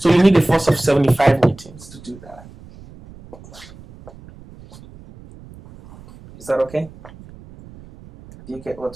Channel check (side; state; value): right; noise; rumble, 21 dB below the sound